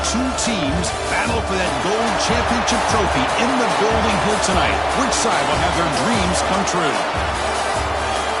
two teams battle for that gold championship trophy in the building here tonight. Which side will have their dreams come true?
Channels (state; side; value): identical; both; correlation 1.00